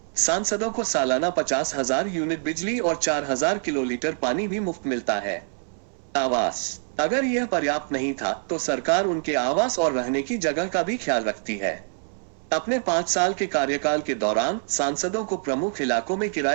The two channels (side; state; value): left; silent; digital silence